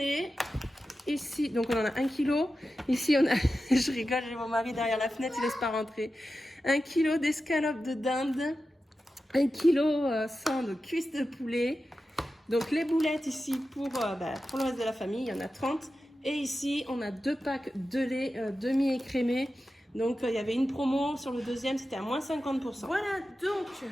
Ici, donc on en a 1 kg. Ici on a, je rigole, j'ai mon mari derrière la fenêtre, il laisse pas rentrer. 1 kg d'escalope de dinde, 1 kg 100 de cuisse de poulet. Donc les boulettes ici pour le reste de la famille, il y en a 30. Et ici on a 2 packs de lait demi-écrémé. Donc il y avait une promo sur le deuxième, c'était à moins 50%. Voilà donc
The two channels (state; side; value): normal; both; correlation 0.92